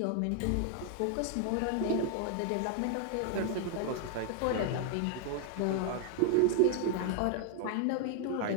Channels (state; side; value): different; both; correlation 0.00